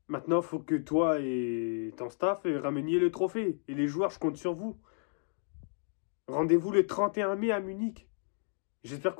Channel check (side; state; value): right; silent; digital silence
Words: Maintenant, il faut que toi et ton staff rameniez le trophée. Et les joueurs, je compte sur vous. Rendez-vous le 31 mai à Munich. J'espère